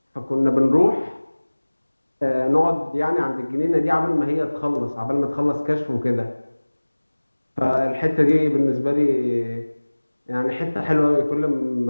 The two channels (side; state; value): both; inverted; correlation -1.00